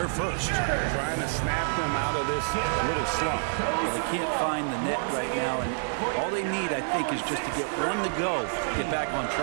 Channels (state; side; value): silent; left; digital silence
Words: first. Trying to snap them out of this little slump. Well, they can't find the net right now, and all they need, I think, is just to get one to go to get back on